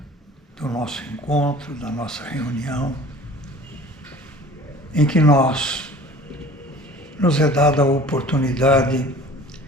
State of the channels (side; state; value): both; normal; correlation 0.45